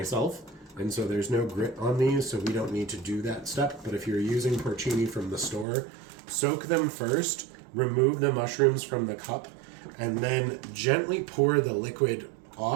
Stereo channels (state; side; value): drops out; left; at 5.7 s